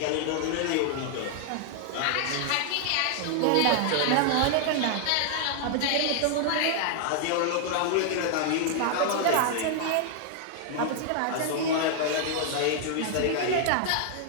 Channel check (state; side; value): different; both; correlation 0.00